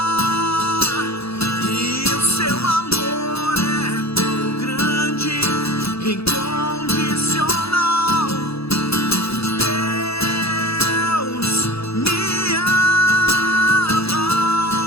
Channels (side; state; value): right; late; 0.77 ms